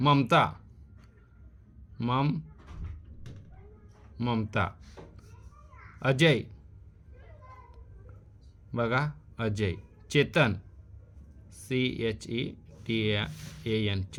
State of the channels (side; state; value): both; identical; correlation 1.00